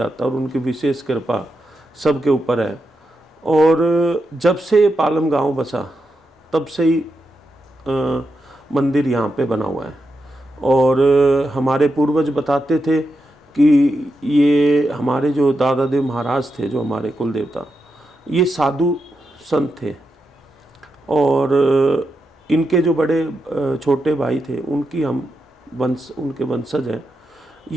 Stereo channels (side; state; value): both; normal; correlation 0.86